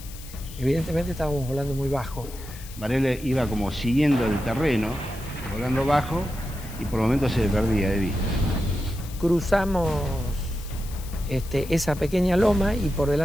Evidentemente estábamos volando muy bajo. Varela iba como siguiendo el terreno, volando bajo, y por momentos se perdía de vista. Cruzamos esa pequeña loma y por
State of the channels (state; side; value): noise; left; hiss, 17 dB below the sound